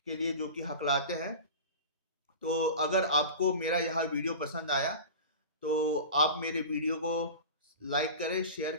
लिए जो कि हकलाते हैं। तो अगर आपको मेरा यह वीडियो पसंद आया तो आप मेरे वीडियो को लाइक करें, शेयर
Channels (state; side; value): inverted; both; correlation -0.32